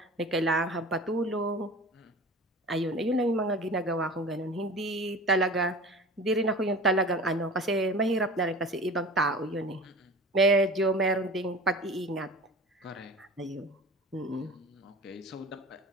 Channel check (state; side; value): normal; both; correlation 0.38